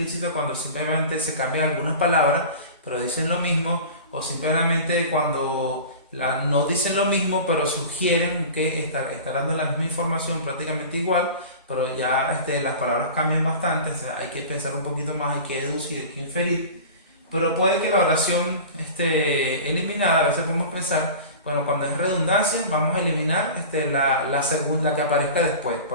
cuando simplemente se cambian algunas palabras, pero dicen lo mismo, o simplemente cuando no dicen lo mismo, pero sugieren que está dando la misma información prácticamente igual, pero ya las palabras cambian bastante, o sea, hay que pensar un poquito más, hay que deducir, hay que inferir. Pero puede que la oración eliminada, a veces podemos pensar, bueno, cuando es redundancia, vamos a eliminar la segunda que aparezca después.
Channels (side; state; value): both; inverted; correlation -0.36